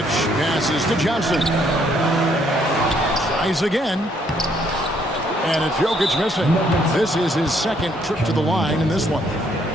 passes to Johnson. Tries again. And it's Jokic missing. This is his second trip to the line in this one.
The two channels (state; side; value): normal; both; correlation 0.68